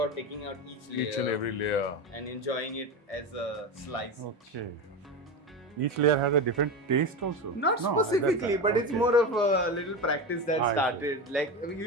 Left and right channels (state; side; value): normal; both; correlation 0.20